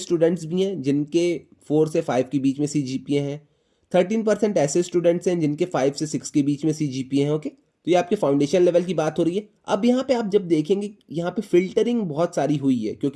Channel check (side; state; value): both; identical; correlation 1.00